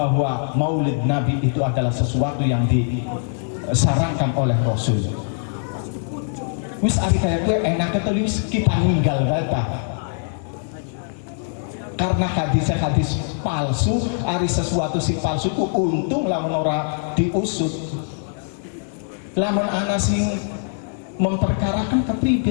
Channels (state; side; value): silent; right; digital silence